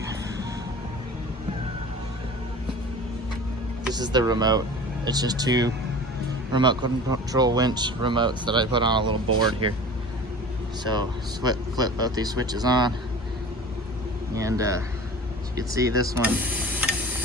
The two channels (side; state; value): both; normal; correlation 0.38